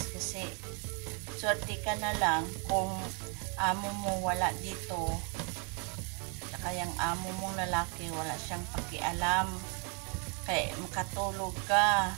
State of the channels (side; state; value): left; quieter; 36.8 dB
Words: kasi swerte ka na lang kung amo mo wala dito. Saka yung amo mong lalaki wala siyang pakialam. Kaya makatulog ka.